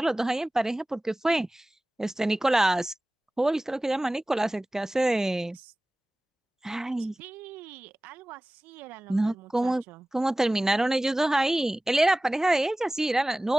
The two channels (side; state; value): both; normal; correlation 0.98